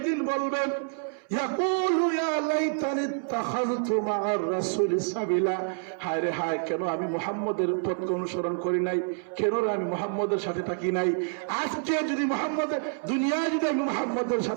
দিন বলবেন, ইয়াকুলু ইয়া লাইতানি ইত্তাখাযতু মা'আর রাসূলি সাবিলা। হায় রে হায়, কেন আমি মুহাম্মদের তত্ত্ব অনুসরণ করি নাই, কেন আমি মুহাম্মদের সাথে থাকি নাই। আজকে যদি মুহাম্মদের দুনিয়ায় যদি আমি মুহাম্মদের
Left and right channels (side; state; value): left; silent; 60 dB below the other